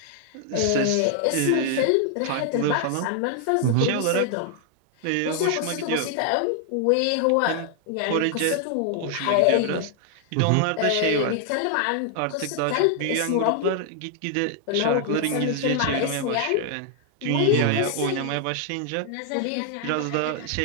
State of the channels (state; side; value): different; both; correlation 0.00